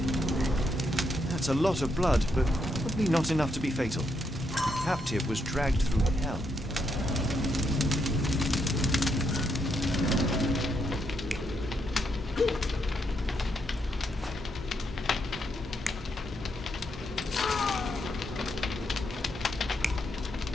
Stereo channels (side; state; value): both; normal; correlation 0.78